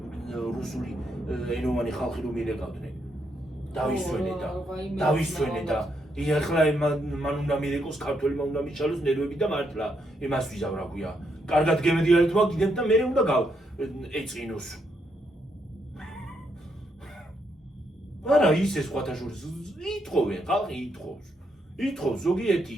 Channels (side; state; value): both; normal; correlation 0.78